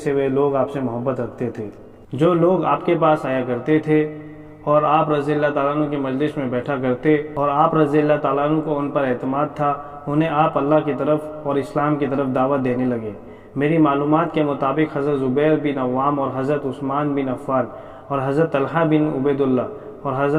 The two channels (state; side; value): identical; both; correlation 1.00